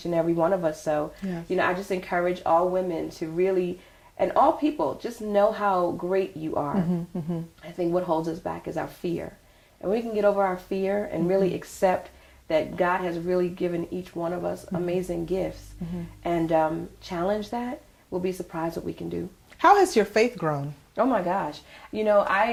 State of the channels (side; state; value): both; identical; correlation 1.00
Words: and every one of us. So, I just encourage all women to really, and all people, just know how great you are. I think what holds us back is our fear. And we can get over our fear and really accept that God has really given each one of us amazing gifts, and challenge that, we'll be surprised what we can do. How has your faith grown? Oh my gosh.